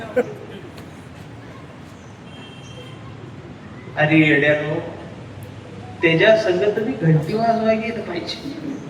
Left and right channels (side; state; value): both; identical; correlation 1.00